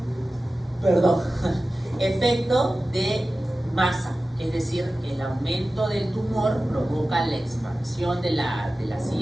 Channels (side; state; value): both; normal; correlation 0.95